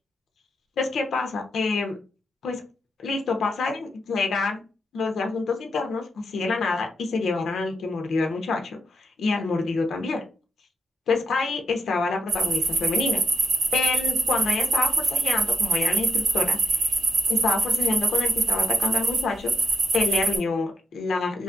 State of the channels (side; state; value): both; normal; correlation 0.79